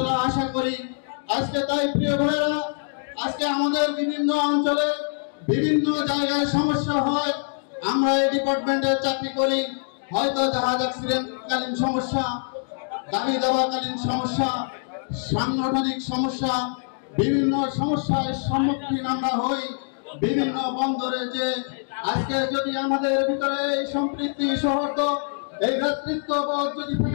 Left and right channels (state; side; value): silent; right; digital silence